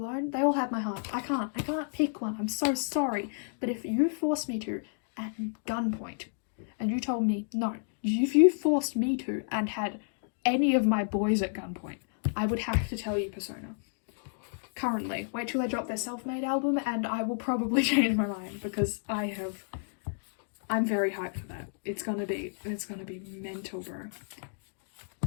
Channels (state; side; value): silent; right; digital silence